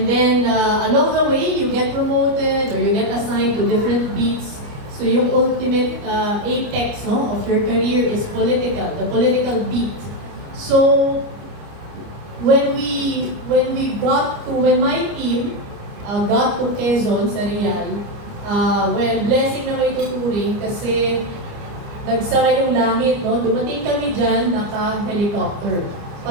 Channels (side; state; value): left; late; 29 ms